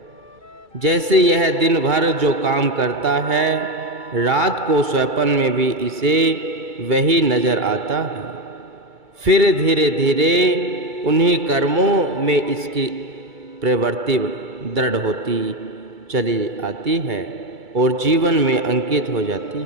जैसे यह दिन भर जो काम करता है रात को स्वप्न में भी इसे वही नजर आता है। फिर धीरे धीरे उन्हीं कर्मों में इसकी प्रवृत्ति दृढ़ होती चली आती है और जीवन में अंकित हो जाती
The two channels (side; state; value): left; late; 2.3 ms